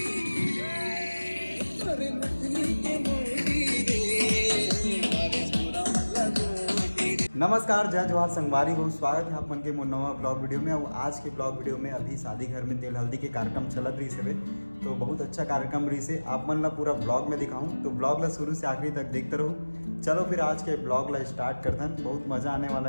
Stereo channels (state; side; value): inverted; both; correlation -1.00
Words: नमस्कार, जय जोहार संगवारी हो। स्वागत है आप मन के नवा ब्लॉग वीडियो में। और आज के ब्लॉग वीडियो में अभी शादी घर में तेल हल्दी के कार्यक्रम चलत रही से, तो बहुत अच्छा कार्यक्रम रही से आप मन ला पूरा ब्लॉग में दिखाऊं, तो ब्लॉग ला शुरू से आखिरी तक देखते रहो। चलो फिर आज के ब्लॉग ला स्टार्ट करते हैं। बहुत मज़ा आने